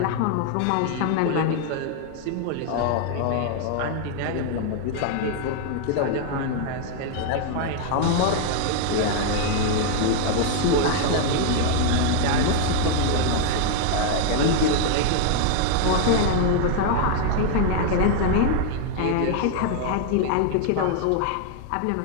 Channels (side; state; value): both; different; correlation 0.00